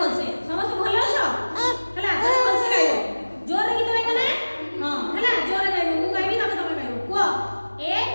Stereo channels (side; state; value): both; inverted; correlation -1.00